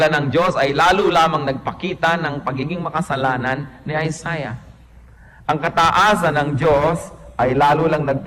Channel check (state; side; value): identical; both; correlation 1.00